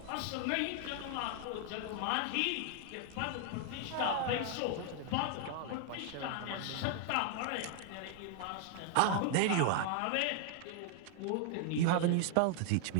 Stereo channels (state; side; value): different; both; correlation 0.00